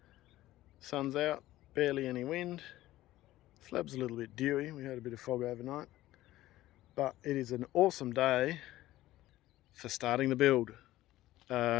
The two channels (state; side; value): quieter; right; 15.7 dB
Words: Sun's out, barely any wind. Slab's a little bit dewy, we had a bit of fog overnight. But it is an awesome day for starting the build.